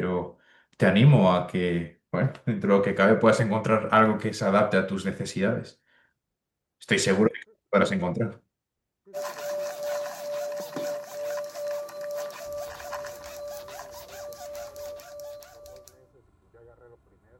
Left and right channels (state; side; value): identical; both; correlation 1.00